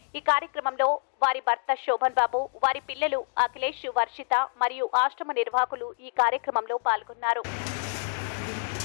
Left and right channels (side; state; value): right; silent; digital silence